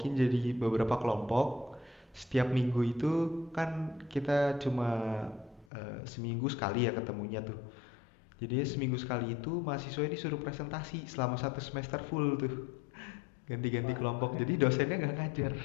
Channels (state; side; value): drops out; right; at 5.7 s